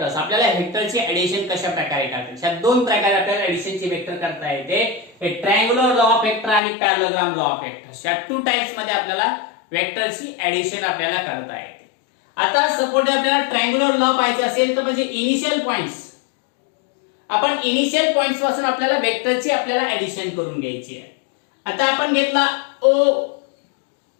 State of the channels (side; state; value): right; drops out; at 6.6 s